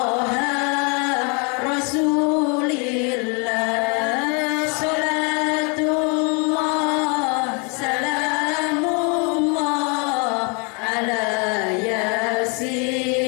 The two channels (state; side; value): quieter; right; 34.0 dB